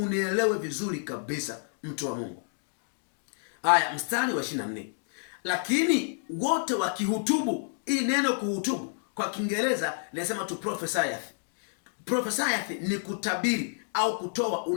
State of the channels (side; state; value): right; silent; digital silence